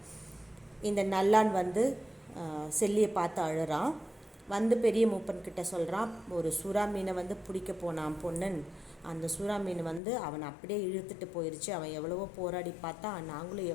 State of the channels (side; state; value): right; drops out; at 10.0 s